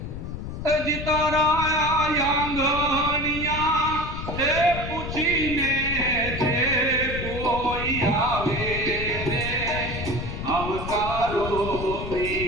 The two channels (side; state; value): left; noise; rumble, 7 dB below the sound